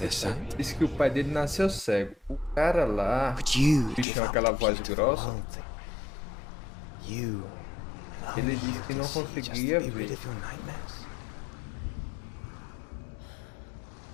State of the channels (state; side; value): drops out; right; at 4.0 s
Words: sight? Diz que o pai dele nasceu cego. O cara lá, But you bicho give com up aquela the voz key to the grossa, world thing. You and ele only disse you que can não see just to conseguia be rid ver. of your nightmares.